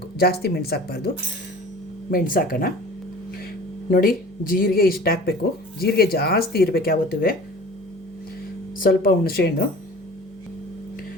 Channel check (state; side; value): normal; both; correlation 0.42